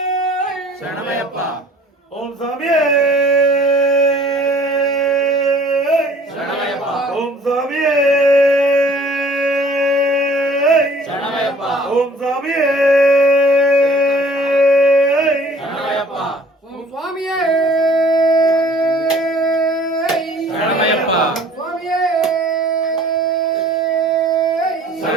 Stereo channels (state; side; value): normal; both; correlation 0.53